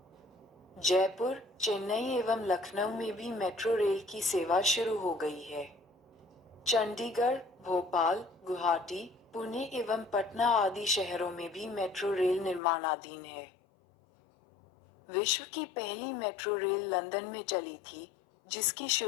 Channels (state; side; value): drops out; right; at 12.6 s